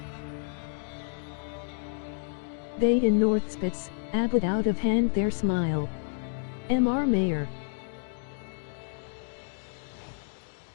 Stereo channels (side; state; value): right; silent; digital silence